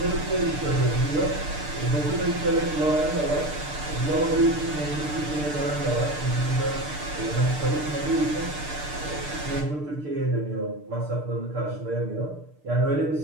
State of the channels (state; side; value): late; left; 6.7 ms